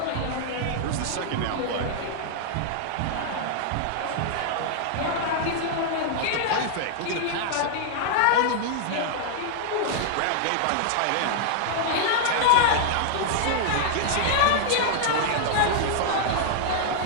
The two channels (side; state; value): both; different; correlation -0.01